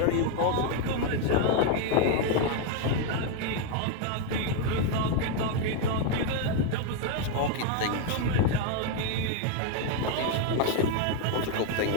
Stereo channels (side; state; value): both; different; correlation 0.01